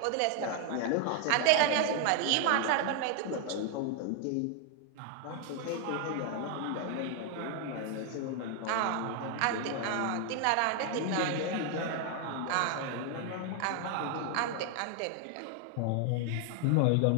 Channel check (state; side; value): different; both; correlation 0.01